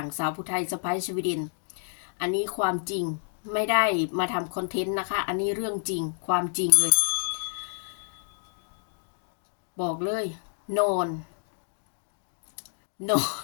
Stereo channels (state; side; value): silent; right; 59 dB below the other